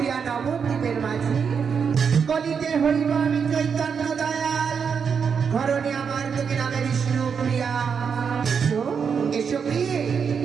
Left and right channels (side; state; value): left; quieter; 6.4 dB